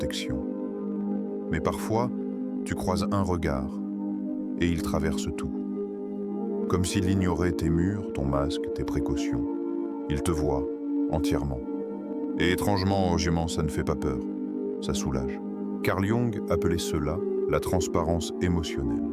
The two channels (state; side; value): identical; both; correlation 1.00